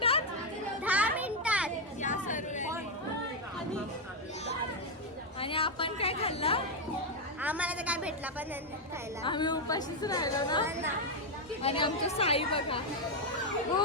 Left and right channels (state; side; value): normal; both; correlation 0.02